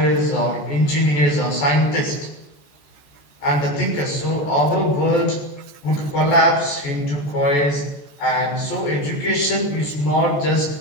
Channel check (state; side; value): late; right; 14 ms